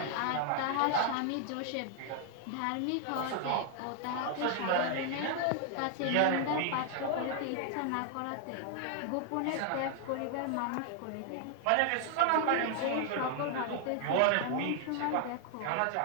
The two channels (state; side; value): different; both; correlation 0.00